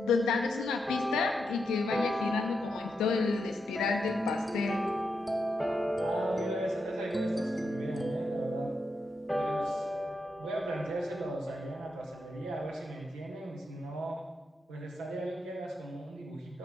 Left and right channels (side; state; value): both; normal; correlation 0.85